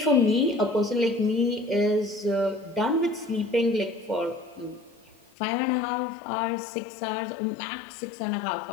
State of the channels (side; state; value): right; drops out; at 5.2 s